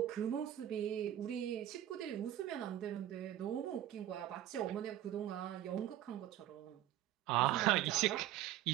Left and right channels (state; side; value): quieter; left; 12.6 dB